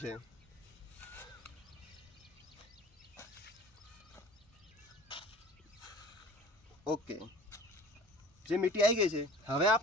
છે. ઓકે, જે મીઠી આવી ગઈ છે. હવે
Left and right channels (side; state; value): both; normal; correlation 0.44